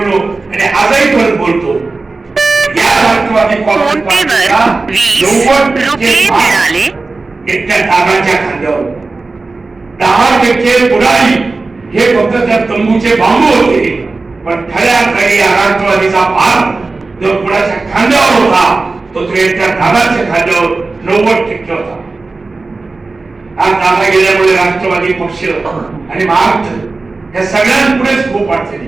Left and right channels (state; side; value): quieter; left; 3.7 dB